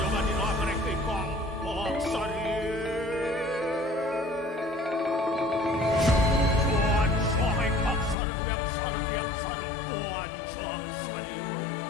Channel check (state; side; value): drops out; right; at 8.2 s